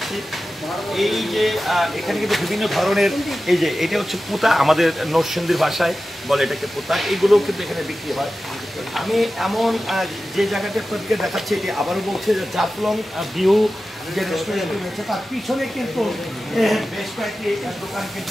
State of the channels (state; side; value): normal; both; correlation 0.94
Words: এই যে এখানে কিন্তু বিভিন্ন ধরনের, এই যে এটা হচ্ছে পুতা, আমাদের নরসিংদীর ভাষায় বলে এটাকে পুতা, এগুলো কিন্তু এখানে বিক্রি হয়। আমি এমন যে জায়গাটা আপনাদেরকে দেখাচ্ছি এটি আবারও বলছে যে জাফলং ভিউ যে রেস্টুরেন্ট রয়েছে তার পিছনে কিন্তু বেশ কয়েকটি দোকান কিন্তু